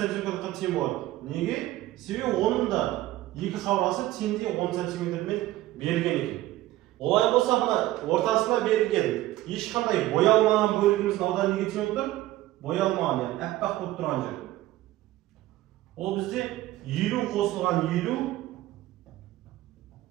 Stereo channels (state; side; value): quieter; left; 16.0 dB